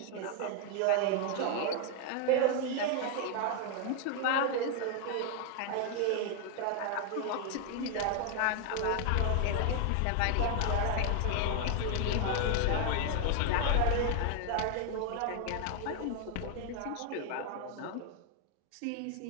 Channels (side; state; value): both; different; correlation 0.00